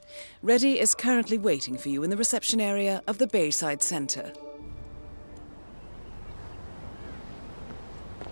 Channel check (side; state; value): both; inverted; correlation -1.00